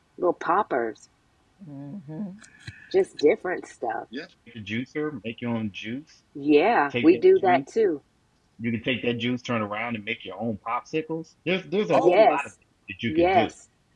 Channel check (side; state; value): both; identical; correlation 1.00